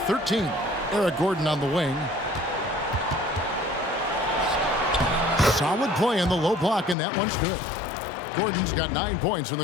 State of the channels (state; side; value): drops out; right; at 7.0 s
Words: Eric Gordon on the wing. Solid play in the low block, and that one's good. Gordon's got 9 points in the